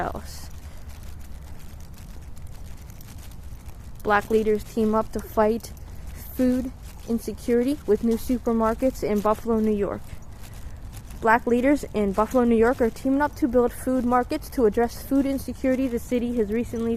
Black leaders team up to fight food insecurity with new supermarkets in Buffalo, New York. Black leaders in Buffalo, New York are teaming up to build food markets to address food insecurity the city has recently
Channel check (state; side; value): identical; both; correlation 1.00